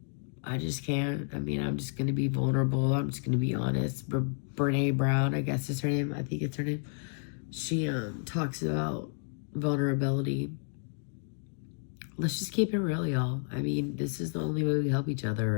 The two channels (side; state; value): right; silent; digital silence